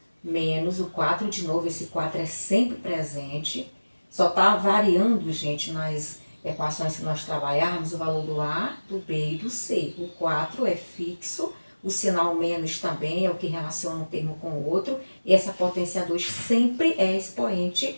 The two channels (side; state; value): both; inverted; correlation -1.00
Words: menos o 4 de novo, esse 4 é sempre presente. Só está variando, gente, nas equações que nós trabalharmos, o valor do A, do B e do C. O 4 é fixo, o sinal menos também é o que relaciona um termo com o outro, e essa potência 2 sempre é